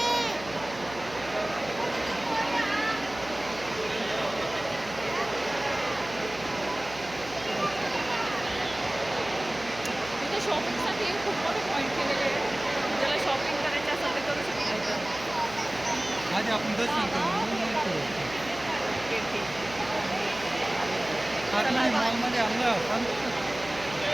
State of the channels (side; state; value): right; noise; hum, 16 dB below the sound